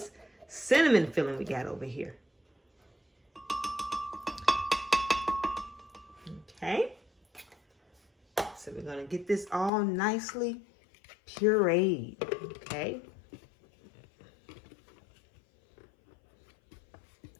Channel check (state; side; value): drops out; right; at 9.7 s